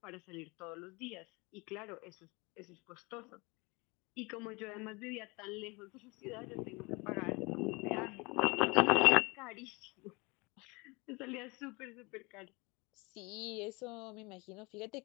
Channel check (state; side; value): quieter; right; 26.8 dB